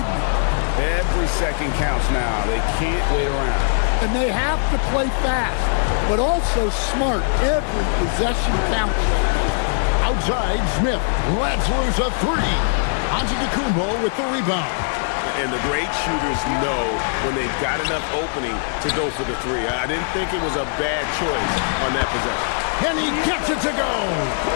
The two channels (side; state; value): right; silent; digital silence